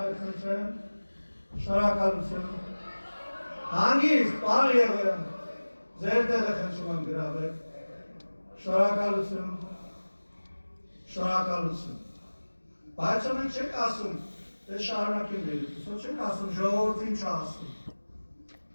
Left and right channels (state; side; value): inverted; both; correlation -1.00